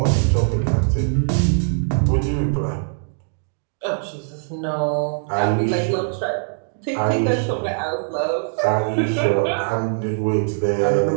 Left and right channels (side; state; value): left; silent; digital silence